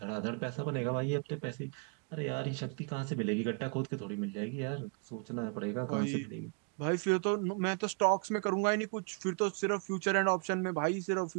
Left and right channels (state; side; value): quieter; left; 37.7 dB